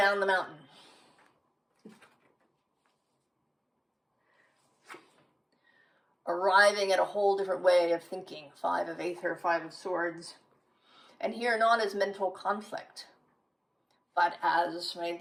the mountain. Arriving at a whole different way of thinking. 5 of Aether, 5 of Swords. And here not as mental conflict, but as, right,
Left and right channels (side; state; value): both; identical; correlation 1.00